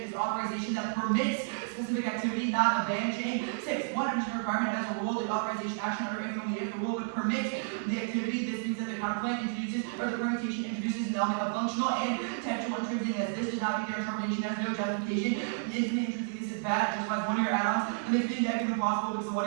is authorization that permits specific activity, not a ban chain. 6. One additional requirement has a rule. The authorization action under if and only if the rule would permit the activity. This means that the counterplan introduces, or the permutation introduces an element of functional and textual intrinsic. As this does not meet their interpretation, has no justification. The infinite intrinsic is bad, justifies one-year add-ons, and they think that can be possible because the 1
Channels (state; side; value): silent; left; digital silence